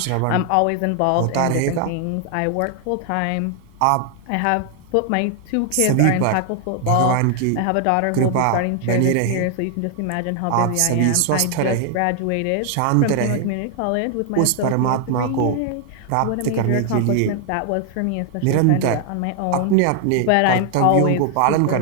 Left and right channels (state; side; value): different; both; correlation 0.00